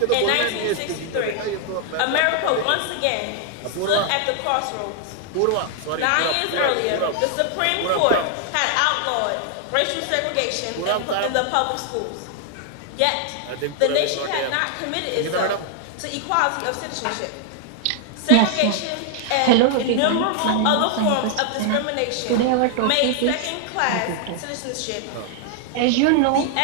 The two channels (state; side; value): different; both; correlation 0.00